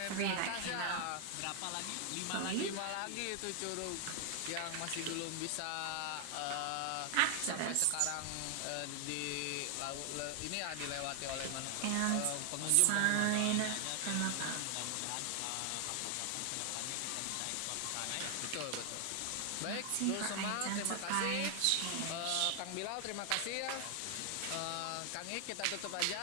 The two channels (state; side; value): different; both; correlation 0.00